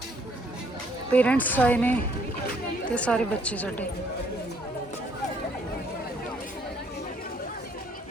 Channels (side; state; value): both; normal; correlation 0.65